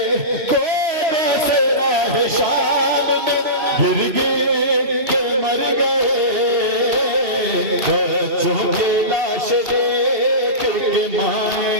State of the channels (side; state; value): left; late; 2.2 ms